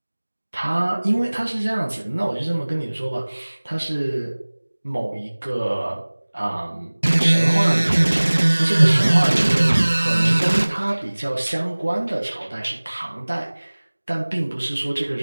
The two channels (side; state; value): both; inverted; correlation -1.00